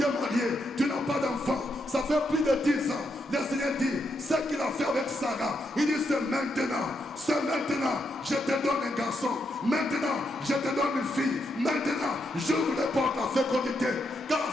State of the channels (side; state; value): both; normal; correlation 0.81